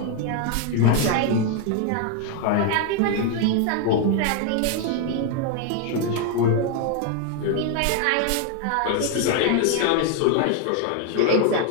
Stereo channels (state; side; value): different; both; correlation 0.01